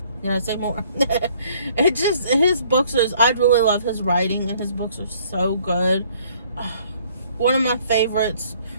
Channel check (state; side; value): inverted; both; correlation -0.60